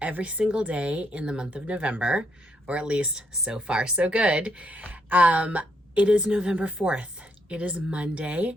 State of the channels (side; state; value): both; normal; correlation 0.75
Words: every single day in the month of November, or at least so far so good. It is November 4th. It is Monday,